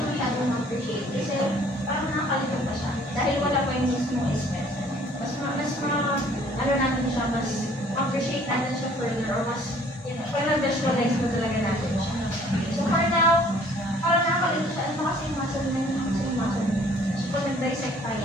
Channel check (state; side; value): normal; both; correlation 0.56